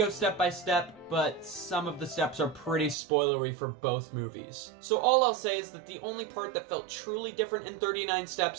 step by step, but some of the steps are pretty spoilery for both movies. So all I'll say is that the only part that felt truly different in 39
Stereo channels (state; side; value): drops out; left; at 3.0 s